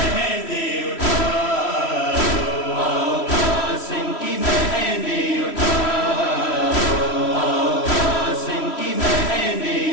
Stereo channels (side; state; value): right; late; 3.1 ms